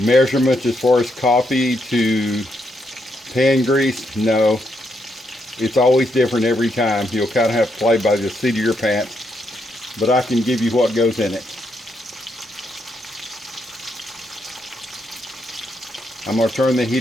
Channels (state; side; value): normal; both; correlation 0.78